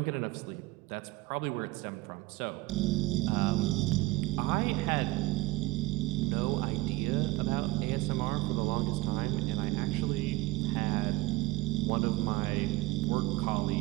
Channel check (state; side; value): quieter; left; 19.7 dB